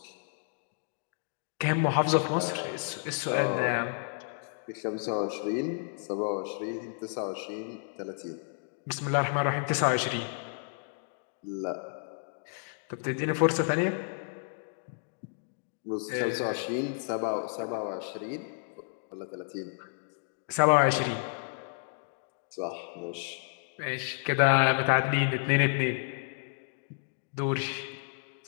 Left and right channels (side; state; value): right; silent; 57 dB below the other